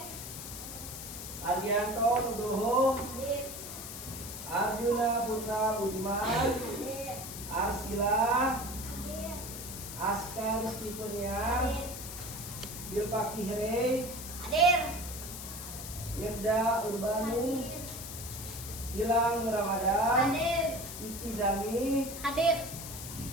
Ardianto Nugroho, Hadir. Arjuna Putra Budiman, Hadir. Arsila, Hadir. Askar Stepenia, Hadir. Bilpa Kihre, Hadir. Yerda Urbanu, Gilang Ramadan, Hadir. Iki Zami, Hadir.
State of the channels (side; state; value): left; noise; hiss, 9 dB below the sound